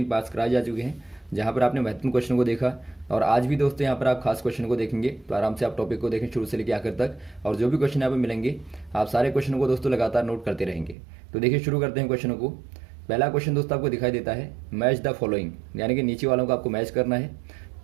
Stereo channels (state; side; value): drops out; left; at 11.0 s